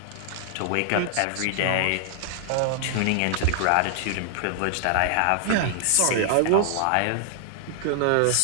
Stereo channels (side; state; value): both; different; correlation 0.00